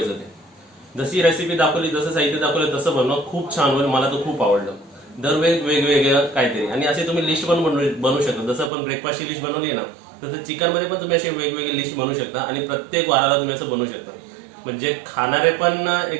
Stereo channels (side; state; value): left; drops out; at 8.7 s